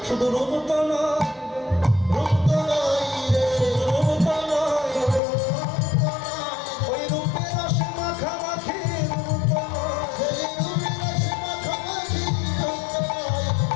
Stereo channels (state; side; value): drops out; right; at 5.2 s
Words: শুধু রূপ তো নয়, রূপ তো নয় রে, রূপ তো নয়, ওই রূপের রসে মাখামাখি, রূপ তো নয়,